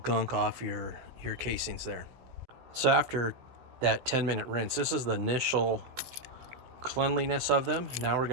off your casings there. So after that 10-minute rinse, this is the initial cleanliness of them. Now we're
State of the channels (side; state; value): left; late; 16 ms